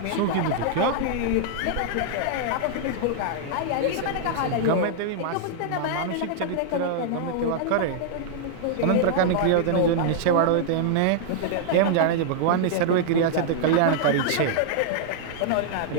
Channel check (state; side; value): different; both; correlation -0.01